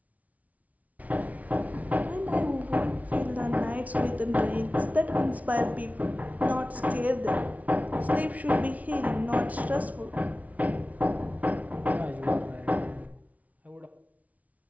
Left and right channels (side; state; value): left; late; 0.070 ms